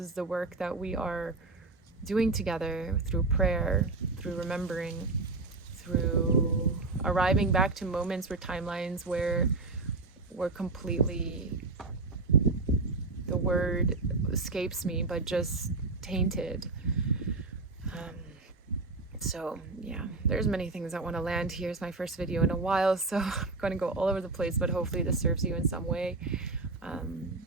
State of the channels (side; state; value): left; quieter; 3.6 dB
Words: the work that we are doing together through prayer, through remembering, through arriving back to moments where timelines where we're completely, the word escapes me, but just tainted. So yeah, there's many things I want to land here. It's my first video in a while, so I'm going to go all over the place, but hopefully this serves you in some way.